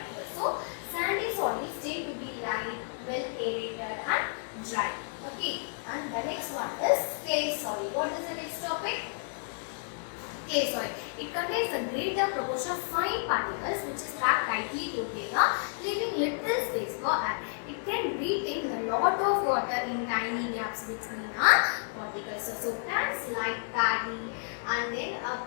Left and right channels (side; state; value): right; silent; digital silence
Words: the next one is clay soil. What is the next topic? Clay soil. It contains a greater proportion of fine particles which is packed tightly together, leaving little space for air. It can retain a lot of water in tiny gaps between particles. So plants like paddy and then